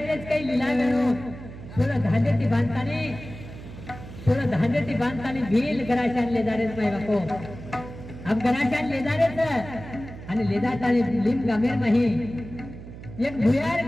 काही लीला गणो 16 धांदे ती बांधतानी भील गराशान ले जारेच माय बापो अब गराशान ले जारेच आणि ले जातानी लिम गामेर नाही एक भुयार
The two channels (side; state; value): right; noise; hum, 14 dB below the sound